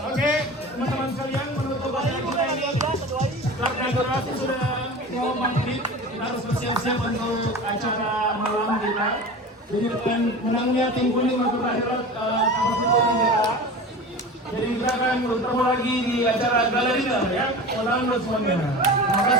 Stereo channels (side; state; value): both; normal; correlation 0.33